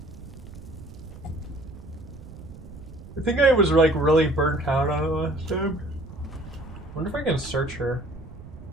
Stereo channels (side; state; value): right; noise; rumble, 16 dB below the sound